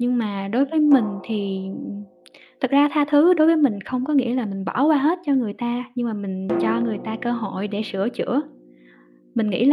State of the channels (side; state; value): both; identical; correlation 1.00